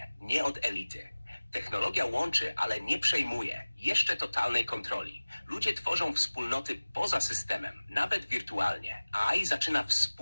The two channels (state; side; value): inverted; both; correlation -1.00